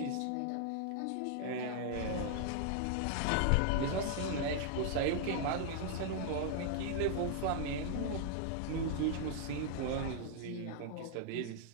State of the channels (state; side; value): different; both; correlation 0.00